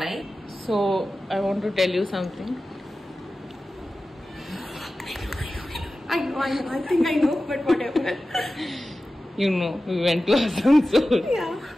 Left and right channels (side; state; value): both; normal; correlation 0.95